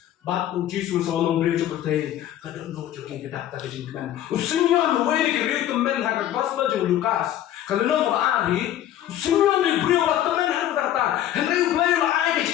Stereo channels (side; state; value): right; quieter; 12.1 dB